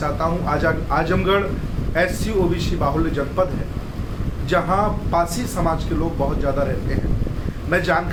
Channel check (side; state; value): both; identical; correlation 1.00